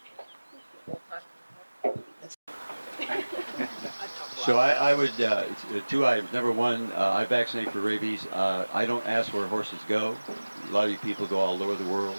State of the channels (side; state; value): both; inverted; correlation -1.00